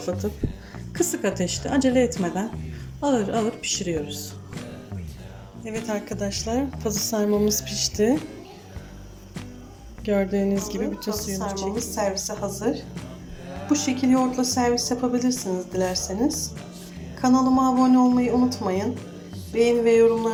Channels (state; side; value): identical; both; correlation 1.00